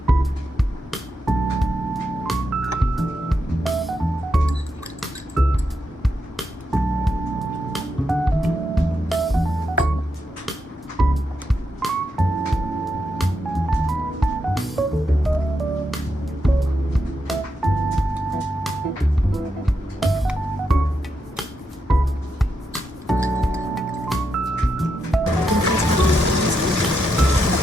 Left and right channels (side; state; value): both; normal; correlation 0.83